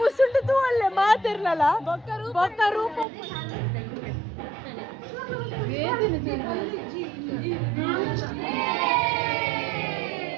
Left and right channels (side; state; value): left; drops out; at 3.1 s